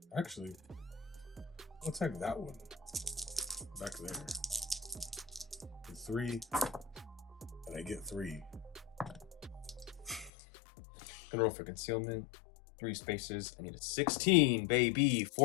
Actually, I'll attack that one. Back there. Get 3. And I get 3. Gonna roll for concealment. 3 spaces. I need a 16, baby.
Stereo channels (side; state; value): right; drops out; at 10.3 s